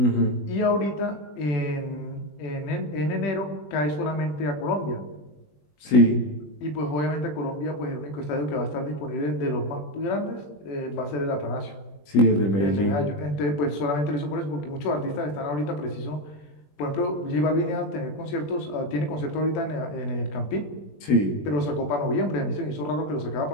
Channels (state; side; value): late; right; 20 ms